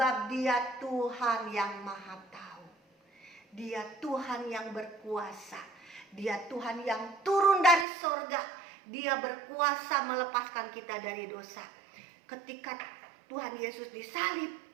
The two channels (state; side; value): drops out; left; at 7.9 s